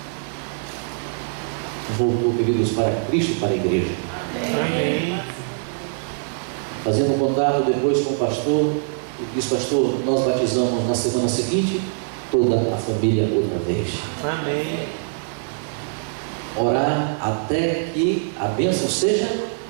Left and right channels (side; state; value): left; silent; digital silence